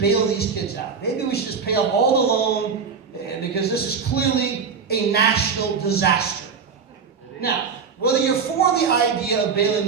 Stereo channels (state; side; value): quieter; left; 5.8 dB